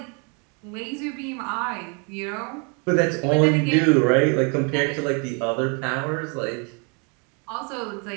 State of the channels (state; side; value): quieter; left; 34.9 dB